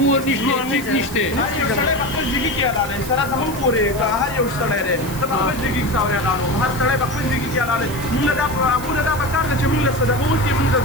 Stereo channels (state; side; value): noise; right; hiss, 14 dB below the sound